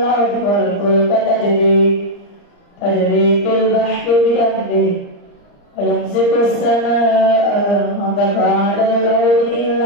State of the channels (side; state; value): right; late; 35 ms